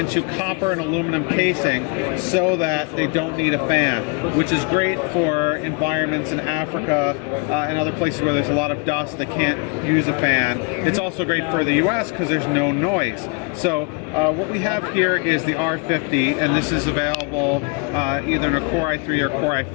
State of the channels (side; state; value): right; quieter; 31.9 dB